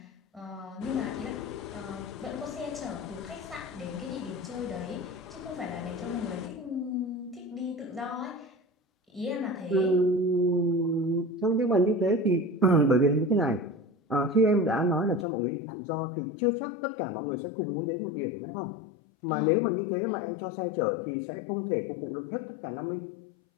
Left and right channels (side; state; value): right; drops out; at 15.2 s